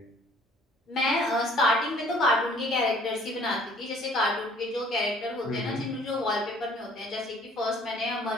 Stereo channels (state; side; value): normal; both; correlation 0.56